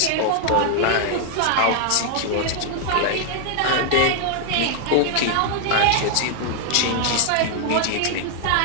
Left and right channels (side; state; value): both; different; correlation 0.00